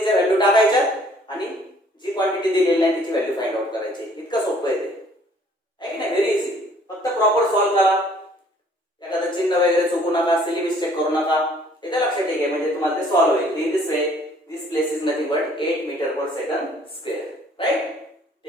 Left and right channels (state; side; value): normal; both; correlation 0.58